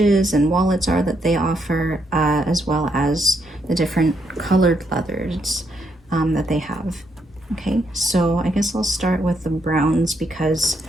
and wallets are that they offer, as well as the different colored leathers that they have. Okay, so I guess I'll start with the browns because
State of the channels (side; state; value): both; normal; correlation 0.77